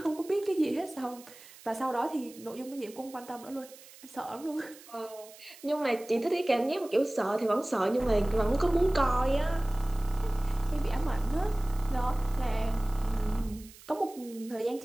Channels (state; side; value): noise; right; hiss, 20 dB below the sound